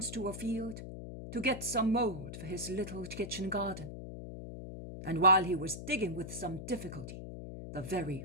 to a field to get some mould for his little kitchen garden, and while he was digging with some difficulty the very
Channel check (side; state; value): left; noise; hum, 9 dB below the sound